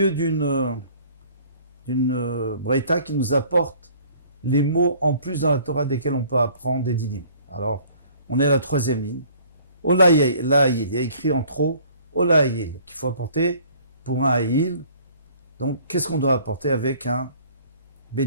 d'une braïta qui nous apporte les mots en plus dans la Torah desquels on peut apprendre des dinim. Alors, on est à la troisième ligne. Olaïl, il y a écrit en trop Olaïl, qu'il faut apporter pour un Aïl. Donc, qu'est-ce qu'on doit apporter avec un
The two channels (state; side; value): inverted; both; correlation -0.54